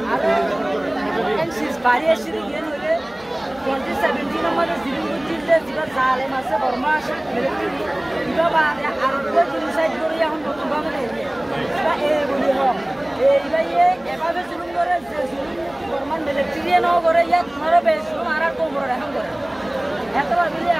আর এনসিস বাড়ি এসে গিয়ে হলে 2017 আমাদের জিরুগুর জিল্লে যেটা জালেম আছে বর্মা আছে এটা বাদে আর জিনিসাইড করে এখন নতুনভাবে নেই এটা এই বলি হোক এইবাই এভাবে জুলুম করে যে জুলুম বর্মান মিলিটারি ন করে ইয়াত তোমারও বেশি আর কম করে এখন করে এতবার মিলে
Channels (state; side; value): noise; left; hum, 26 dB below the sound